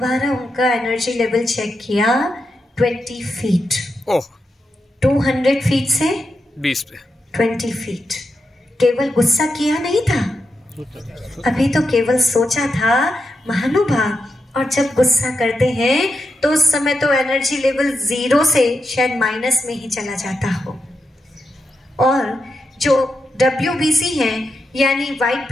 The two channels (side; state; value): both; normal; correlation 0.86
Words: उनका एनर्जी लेवल चेक किया, 20 फीट। 200 फीट से 20 पे 20 फीट। केवल गुस्सा किया नहीं था, अभी तो केवल सोचा था। महानुभाव, और जब गुस्सा करते हैं तो उस समय तो एनर्जी लेवल 0 से शायद माइनस में ही चला जाता हो। और जो WBC हैं, यानी वाइट